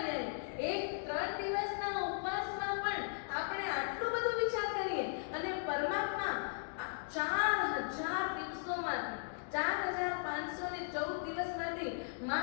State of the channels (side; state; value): right; silent; digital silence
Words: એક 3 દિવસના ઉપવાસમાં પણ આપણે આટલું બધું વિચાર કરીએ, અને પરમાત્મા 4000 દિવસોમાંથી 4514 દિવસમાંથી